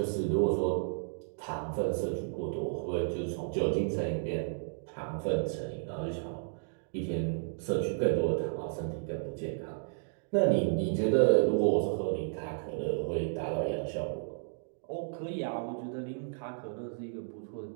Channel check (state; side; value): silent; left; digital silence